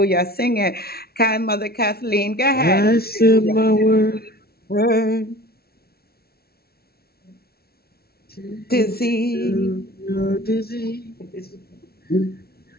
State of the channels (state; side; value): late; right; 0.45 ms